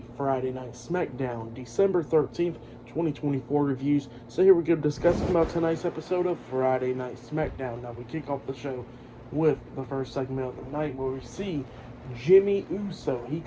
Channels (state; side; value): identical; both; correlation 1.00